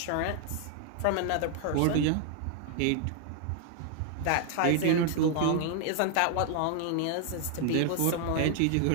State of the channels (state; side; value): different; both; correlation 0.00